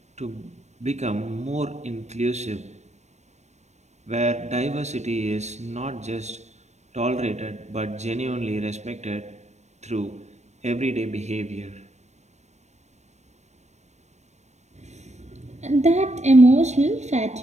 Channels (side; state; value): left; late; 0.33 ms